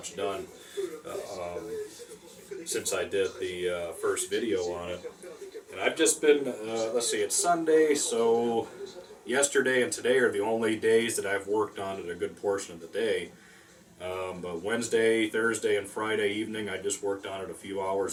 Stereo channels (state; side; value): identical; both; correlation 1.00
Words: done since I did the first video on it. And I've just been, let's see, it's Sunday, so yesterday and today are the only days that I've worked on it a good portion of the day. But Wednesday, Thursday, and Friday evening, I just worked on it a few